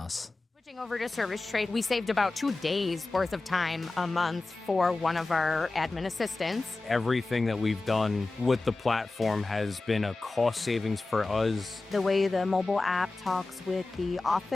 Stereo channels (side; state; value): right; quieter; 3.3 dB